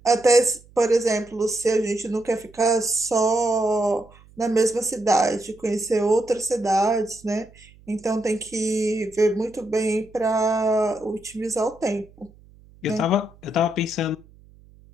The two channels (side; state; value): right; noise; hum, 26 dB below the sound